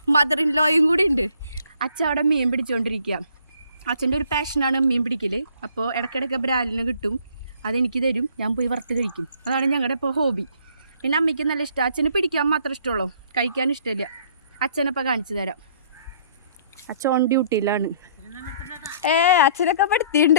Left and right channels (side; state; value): both; inverted; correlation -0.60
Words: ഇൻ ലോയും കൂടി ഉണ്ട്. അച്ഛൻ അവിടെ മീൻ പിടിച്ചുകൊണ്ടിരിക്കുക. അച്ഛൻ്റെ ഒരു പാഷനാണ് മീൻ പിടിക്കൽ. അപ്പോൾ ഇടയ്ക്കിടയ്ക്ക് ബ്രാലിന് കിട്ടും, അതെനിക്ക് തരും, ഞാൻ പോയി വറുത്ത് കഴിക്കും. അതാണ് ഞങ്ങളുടെ ഇപ്പോൾ ഹോബി. പിന്നെ അമ്മയ്ക്ക് നല്ല ഇഷ്ടം. അച്ഛന് പിടിക്കാൻ മാത്രം ഇഷ്ടമുള്ളൂ, കഴിക്കാൻ ഇഷ്ടമില്ല. അച്ഛനപ്പോൾ കാണിച്ചു തരാം. അച്ഛൻ ഓൺ ഡ്യൂട്ടിയിലാണ്. അച്ഛനൊക്കെ